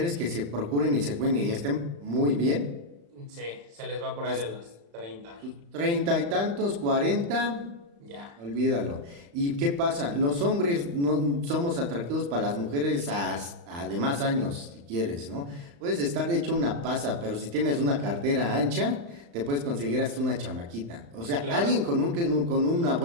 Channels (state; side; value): late; left; 35 ms